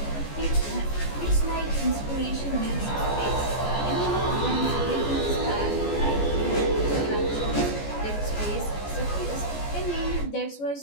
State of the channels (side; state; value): right; late; 14 ms